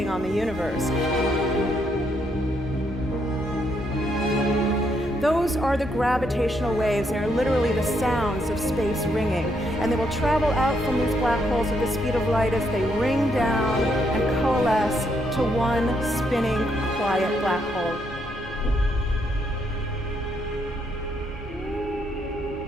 on the universe. Those are the gravitational waves. They're literally the sounds of space ringing. And they will travel out from these black holes at the speed of light as they ring down and coalesce to one spinning, quiet black hole.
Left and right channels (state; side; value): normal; both; correlation 0.75